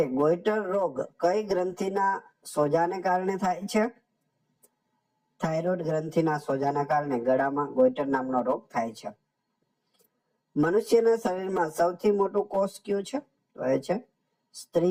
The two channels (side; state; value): both; identical; correlation 1.00